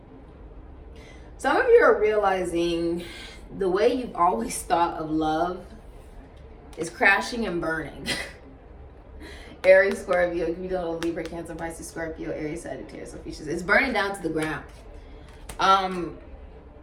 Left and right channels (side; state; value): both; identical; correlation 1.00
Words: Some of you are realizing the way you've always thought of love is crashing and burning. Aries, Scorpio, you know, Libra, Cancer, Pisces, Scorpio, Aries, Sagittarius, Ophiuchus. It's burning down to the ground.